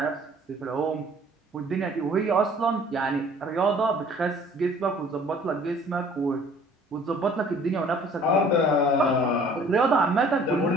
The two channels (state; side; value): normal; both; correlation 0.53